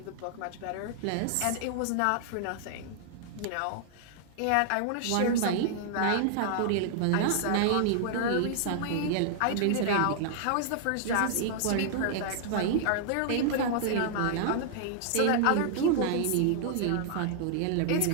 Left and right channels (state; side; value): different; both; correlation -0.01